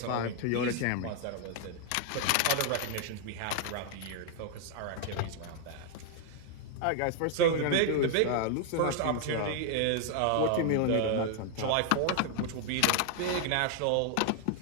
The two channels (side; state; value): both; different; correlation 0.00